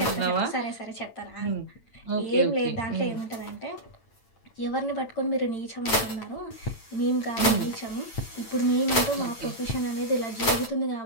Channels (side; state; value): right; late; 8.9 ms